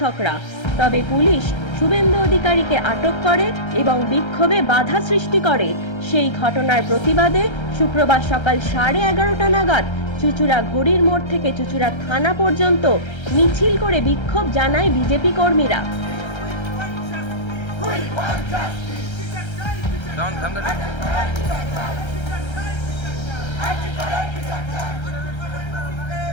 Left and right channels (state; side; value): late; right; 1.3 ms